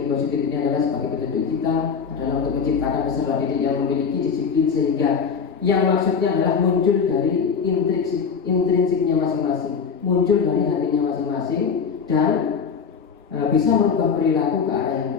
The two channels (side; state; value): right; quieter; 6.2 dB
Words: positif ini adalah sebagai petunjuk kita adalah untuk menciptakan peserta didik yang memiliki disiplin sehingga yang maksudnya adalah muncul dari intrinsiknya masing-masing, muncul dari hatinya masing-masing dan bisa merubah perilaku ke arah yang